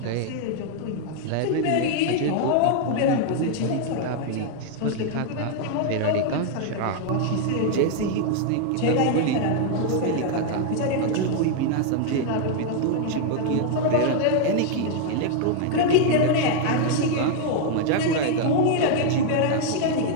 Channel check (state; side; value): different; both; correlation 0.00